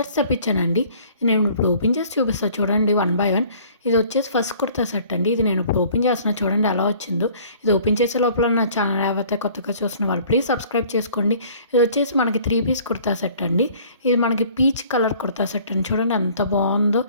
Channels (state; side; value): inverted; both; correlation -0.53